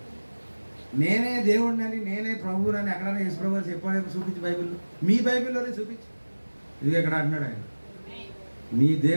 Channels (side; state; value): both; inverted; correlation -1.00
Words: నేనే దేవుడిని అని, నేనే ప్రభువుని అని ఎక్కడైనా యేసు ప్రభు చెప్పాడేమో చూపించి బైబిల్లో. మీ బైబిల్లోనే చూపించి. ఇది ఎక్కడ అంటున్నాడు ఆయన, నీ